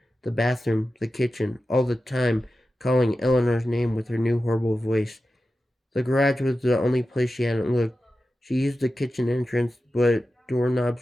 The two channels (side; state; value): both; normal; correlation 0.93